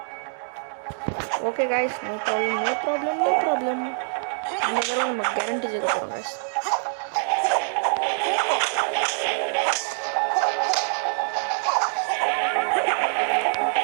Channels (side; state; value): left; silent; digital silence